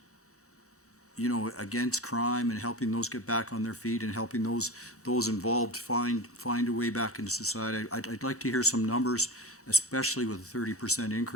against crime and helping those get back on their feet and helping those involved find a way back into society. I'd like to hear some numbers, especially with a 30%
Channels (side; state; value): both; normal; correlation 0.29